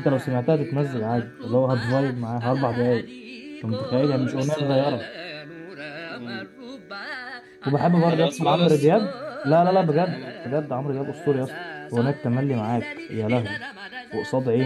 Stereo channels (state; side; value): identical; both; correlation 1.00